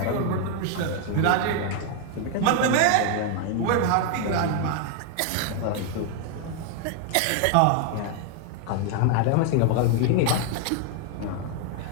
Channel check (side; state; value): both; different; correlation 0.00